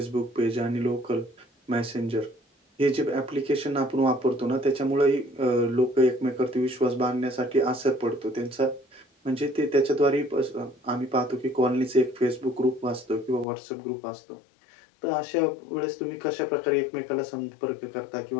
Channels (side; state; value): right; drops out; at 13.5 s